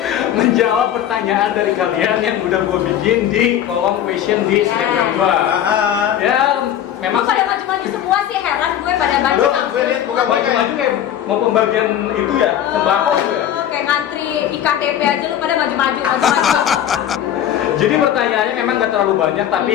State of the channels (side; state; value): right; quieter; 10.7 dB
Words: Menjawab pertanyaan dari kalian yang udah gue bikin di kolom question di Instagram gue. Ya, memang Lu pada maju-maju semua sih, heran gue pada maju. Lu gue lihat bukan maju kayak mau pembagian itu ya, sembako gitu ya. Kayak ngantri IKTP aja lu pada maju-maju. Jadi pertanyaannya memang gak terlalu banyak,